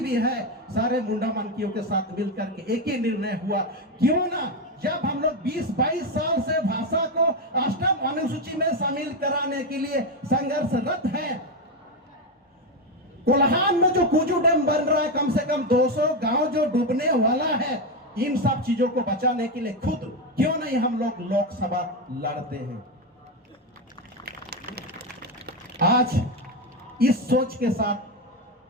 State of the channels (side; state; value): both; normal; correlation 0.10